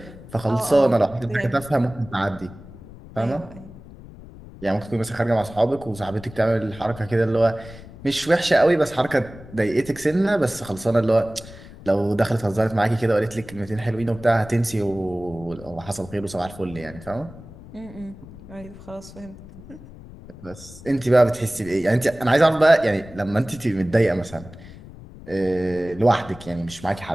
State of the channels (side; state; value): left; noise; rumble, 17 dB below the sound